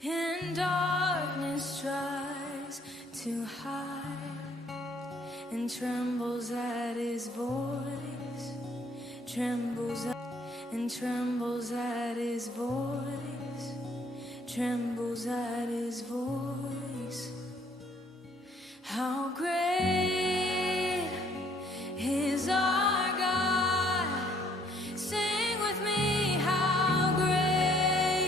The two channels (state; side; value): normal; both; correlation 0.63